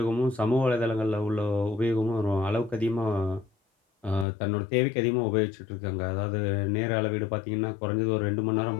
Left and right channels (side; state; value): right; drops out; at 4.2 s